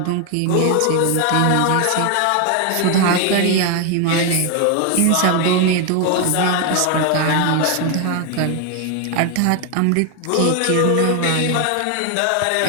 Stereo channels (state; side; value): different; both; correlation 0.01